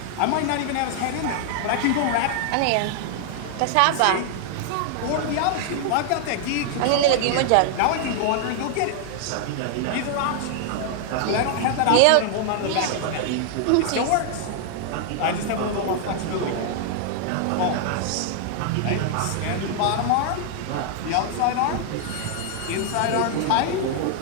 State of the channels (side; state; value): both; different; correlation 0.00